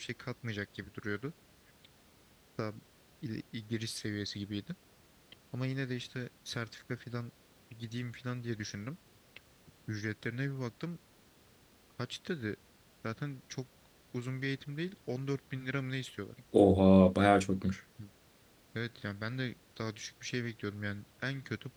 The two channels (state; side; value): identical; both; correlation 1.00